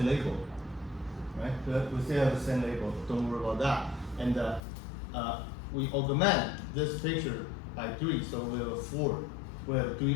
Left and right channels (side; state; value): right; drops out; at 4.6 s